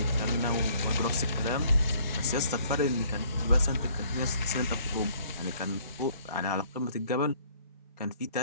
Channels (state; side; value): inverted; both; correlation -0.59